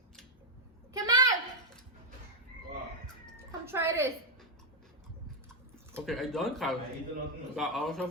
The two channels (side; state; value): both; normal; correlation 0.02